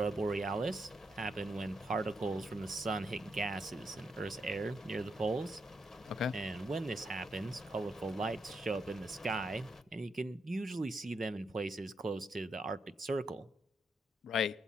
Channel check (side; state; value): both; normal; correlation 0.81